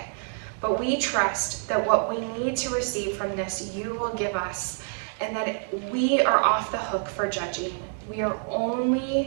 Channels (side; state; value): left; silent; 60 dB below the other